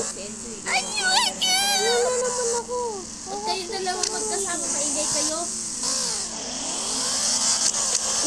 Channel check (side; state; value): both; identical; correlation 1.00